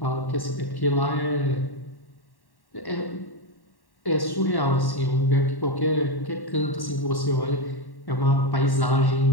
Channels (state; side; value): late; right; 1.1 ms